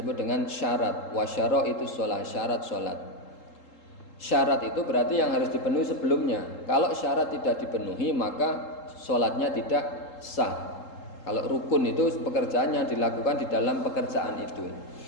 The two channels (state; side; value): late; right; 3.8 ms